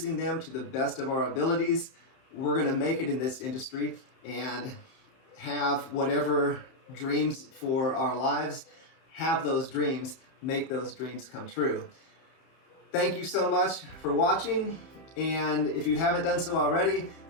them to the best of our abilities. We're going to make it in this industry and have whatever dreams for our lives, have those dreams, make those dreams come true. Thank you so much for watching. And if you haven't done so already,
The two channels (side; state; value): right; late; 31 ms